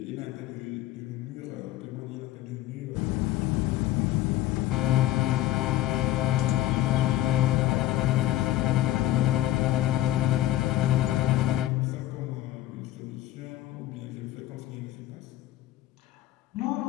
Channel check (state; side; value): quieter; right; 14.7 dB